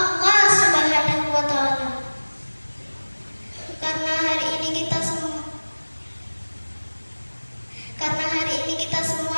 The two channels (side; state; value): both; inverted; correlation -1.00